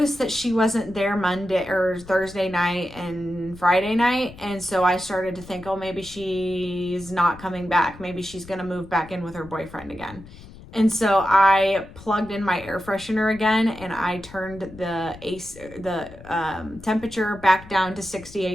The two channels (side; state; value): left; noise; rumble, 18 dB below the sound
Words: that she wasn't there Monday or Thursday night and Friday night. And so I started to think, oh, maybe she's not coming back. Maybe she's going to move back in with her boyfriend again. And so I plugged in my air freshener again, and I turned the temperature back down to